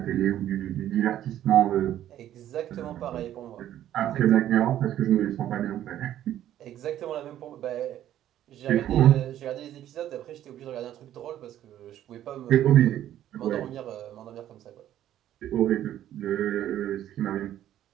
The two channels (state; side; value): quieter; left; 12.0 dB